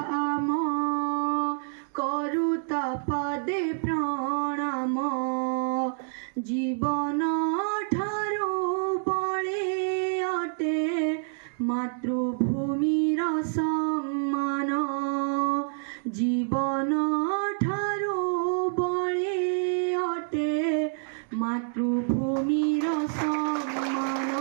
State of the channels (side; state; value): left; silent; digital silence